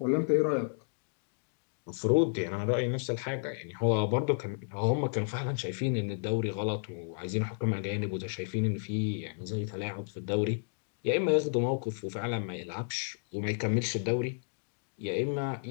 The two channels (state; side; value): silent; right; digital silence